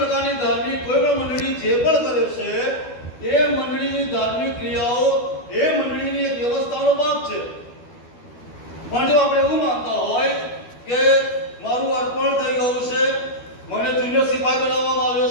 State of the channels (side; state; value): right; late; 12 ms